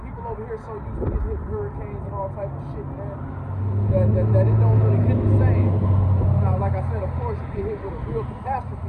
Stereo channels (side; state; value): both; identical; correlation 1.00